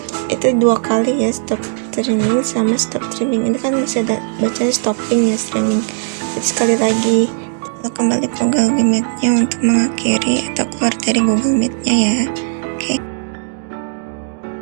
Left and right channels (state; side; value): silent; left; digital silence